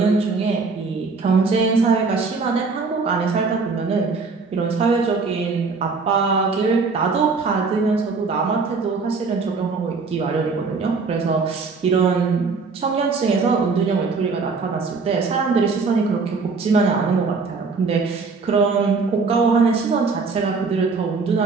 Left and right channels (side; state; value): left; quieter; 4.5 dB